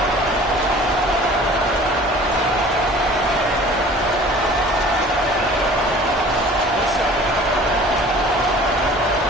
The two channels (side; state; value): both; normal; correlation 0.47